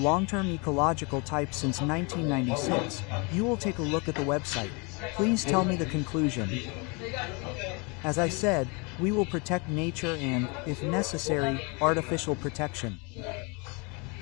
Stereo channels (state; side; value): quieter; right; 31.0 dB